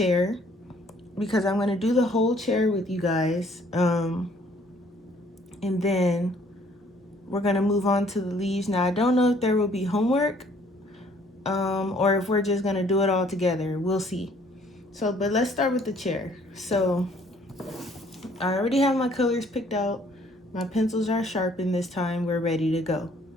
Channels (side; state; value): both; normal; correlation 0.61